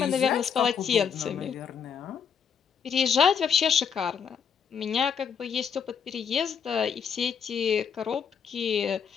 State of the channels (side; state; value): right; quieter; 7.0 dB